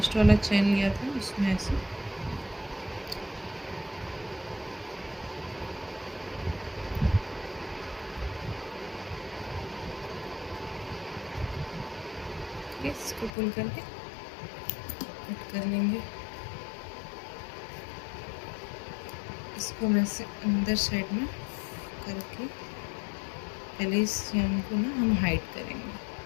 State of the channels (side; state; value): right; drops out; at 13.3 s